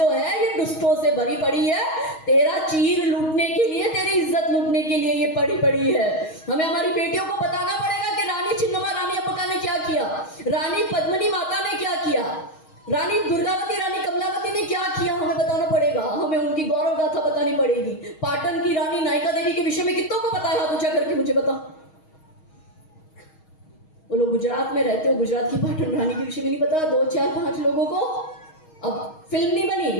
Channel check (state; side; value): late; right; 6.3 ms